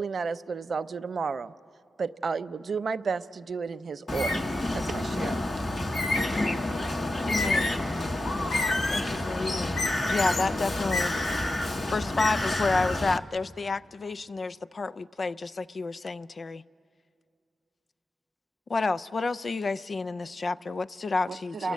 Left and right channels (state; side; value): normal; both; correlation 0.90